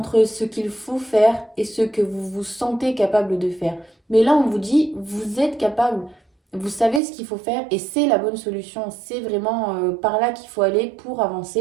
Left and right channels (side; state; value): left; drops out; at 7.0 s